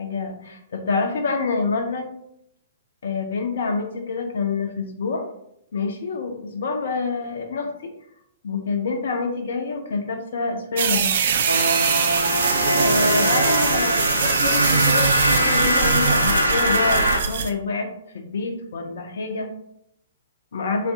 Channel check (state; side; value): inverted; both; correlation -0.65